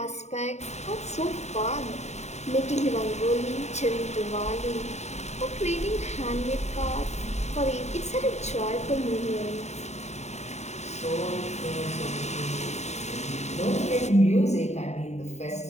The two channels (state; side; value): late; right; 0.32 ms